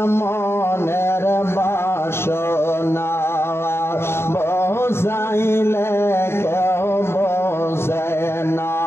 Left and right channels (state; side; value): late; right; 0.12 ms